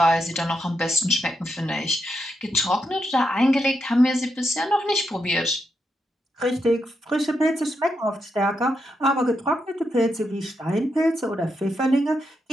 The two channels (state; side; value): normal; both; correlation 0.83